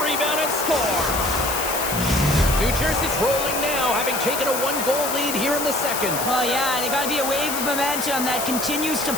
rebound and scored. New Jersey's rolling now, having taken a one-goal lead here in the second. Well, yeah, they got to be a wave of momentum that continues to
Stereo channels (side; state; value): left; noise; hiss, 4 dB below the sound